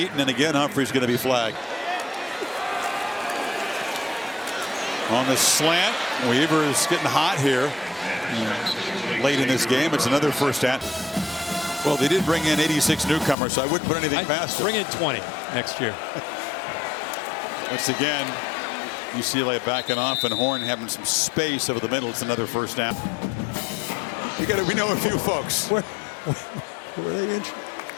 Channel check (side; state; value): right; drops out; at 13.4 s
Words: and again Humphrey's going to be flagged. On the slant, Weaver is getting hot here late in this game. It's another 1st down. Well, they did bring in 86 newcomers, so I wouldn't put anything past them. Bring in 20 next year. Once again, UCLA backing off, and Horn having some space over the middle. It's another 1st down. We know a few folks. Where are they injured?